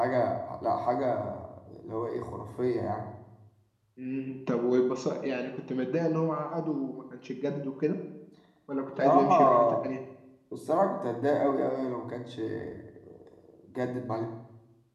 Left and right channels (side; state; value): both; identical; correlation 1.00